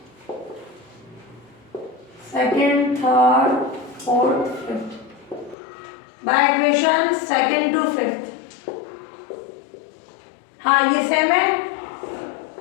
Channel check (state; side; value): drops out; right; at 5.6 s